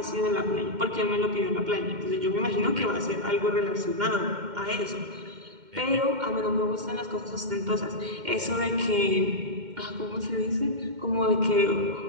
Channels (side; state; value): left; late; 2.1 ms